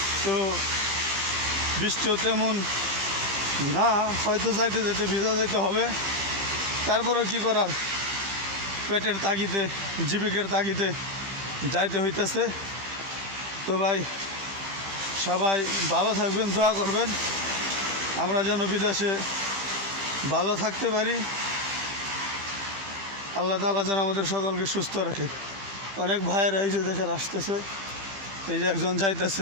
তো বৃষ্টিও তেমন না, হয়তো যাইতে যেতে ভিজা যাইতে হবে। তারপরেও কি করার, পেটের তাগিদে জীবিকার তাগিদে যাইতে হইতেছে। তো ভাই সবাই ভালো থাকবেন, দোয়া করবেন আমরা যেন বিদেশে ভালো থাকতে পারি। আল্লাহ তাআলা যেন আমাদের সকলকে সুস্থ রাখে। অনেক ভাইয়েরা এই যে দেশের আসতেছে, এই যে একজন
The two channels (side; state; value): left; late; 15 ms